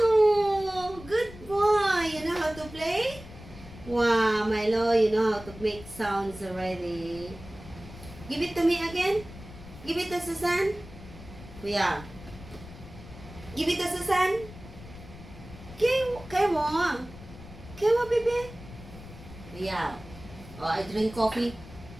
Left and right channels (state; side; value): noise; left; rumble, 16 dB below the sound